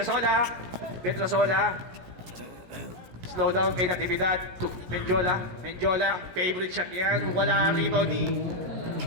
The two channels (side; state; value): left; late; 17 ms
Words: Petrosola. Slow down kay Natividad. Menjola. Menjola. Favorite shot yan. Wala rebound ni